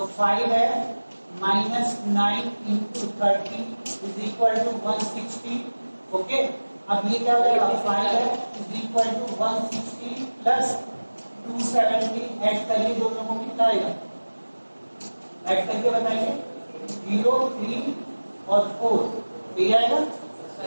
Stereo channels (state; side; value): inverted; both; correlation -1.00